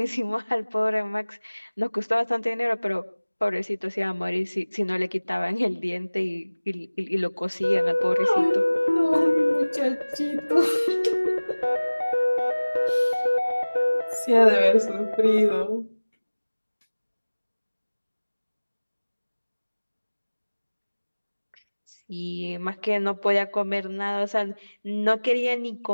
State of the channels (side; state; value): both; inverted; correlation -1.00